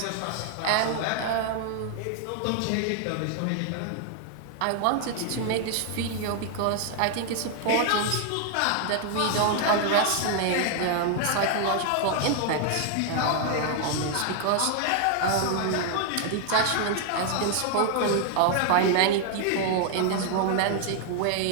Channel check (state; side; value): different; both; correlation 0.00